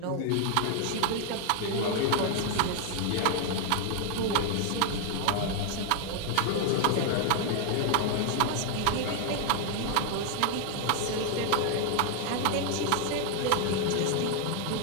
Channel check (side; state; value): both; different; correlation 0.00